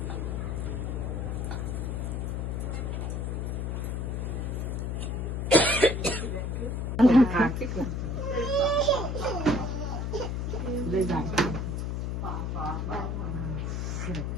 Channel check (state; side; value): noise; left; hum, 1 dB below the sound